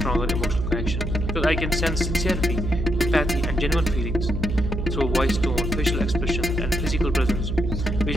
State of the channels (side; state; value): right; noise; hum, 2 dB below the sound